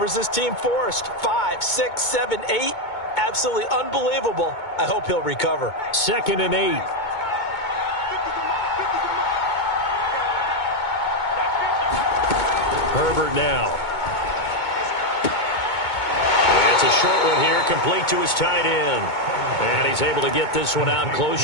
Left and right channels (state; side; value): late; right; 2.2 ms